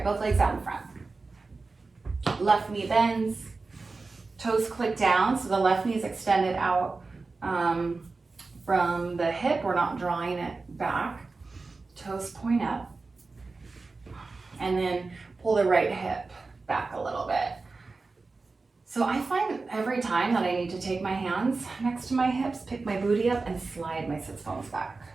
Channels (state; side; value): quieter; left; 3.9 dB